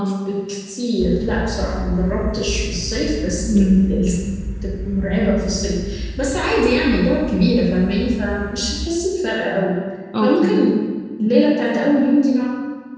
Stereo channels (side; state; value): both; identical; correlation 1.00